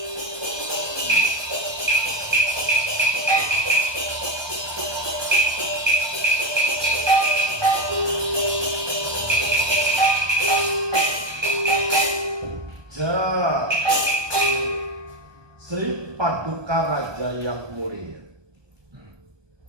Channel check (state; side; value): late; left; 1.2 ms